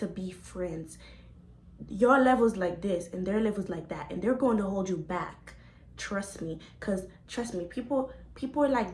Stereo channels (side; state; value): both; identical; correlation 1.00